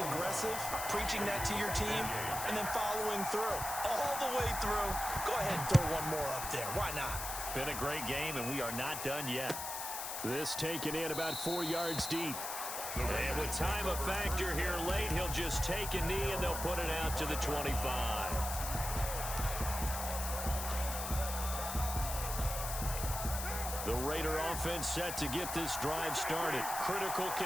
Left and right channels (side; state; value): left; noise; hiss, 5 dB below the sound